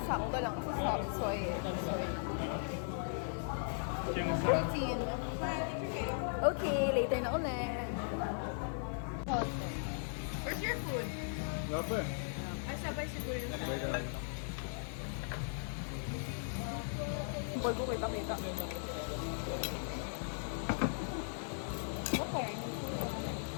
Sakto lang sa subsoy. Siyang sa... Protein. Okay, later na ulit. Where's your food? Gapa. Ay, sabay siguro yun. Boy ko kita. Okay.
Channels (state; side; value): silent; right; digital silence